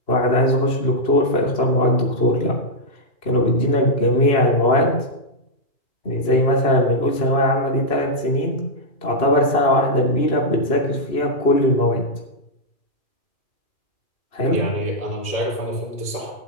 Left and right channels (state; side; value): late; right; 2.4 ms